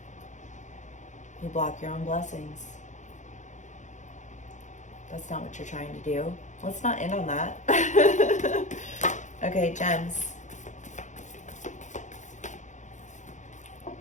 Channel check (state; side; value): late; right; 0.35 ms